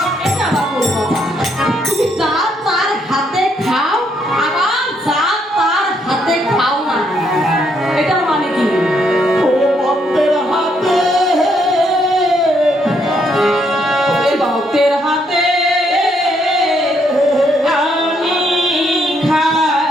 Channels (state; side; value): normal; both; correlation 0.73